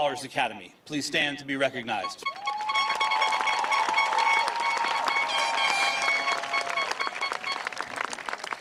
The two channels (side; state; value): both; identical; correlation 1.00